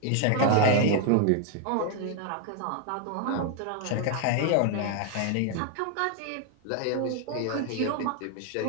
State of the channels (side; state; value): both; different; correlation 0.00